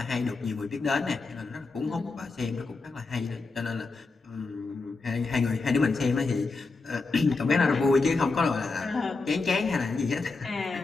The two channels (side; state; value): right; quieter; 3.9 dB